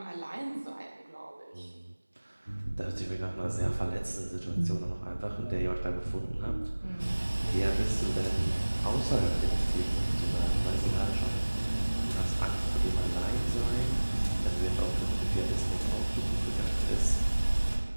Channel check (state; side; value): inverted; both; correlation -1.00